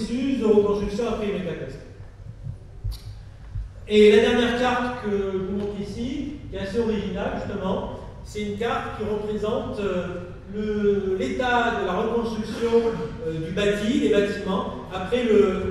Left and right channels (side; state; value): both; identical; correlation 1.00